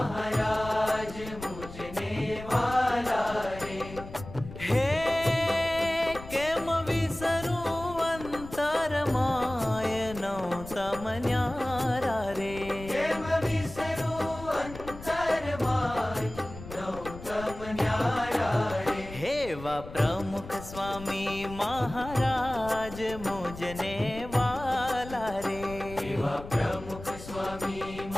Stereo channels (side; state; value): left; noise; rumble, 13 dB below the sound